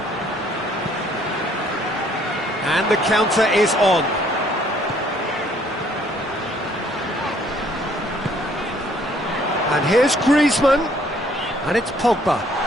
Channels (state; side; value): normal; both; correlation 0.62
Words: And the counter is on. And here's Griezmann. And it's Pogba.